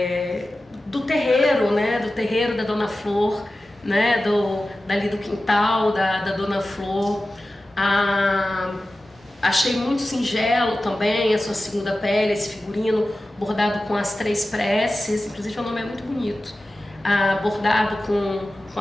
terreiro, né, do terreiro da Dona Flor, né, dali do quintal da Dona Flor. Achei muito singelo também a sua segunda pele, esse figurino bordado com as 3 preces, inclusive o nome é muito bonito, bordado com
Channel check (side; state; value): both; normal; correlation 0.95